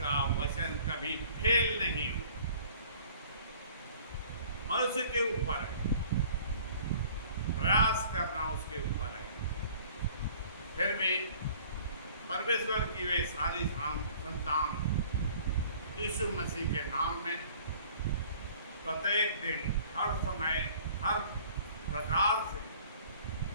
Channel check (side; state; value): both; inverted; correlation -0.52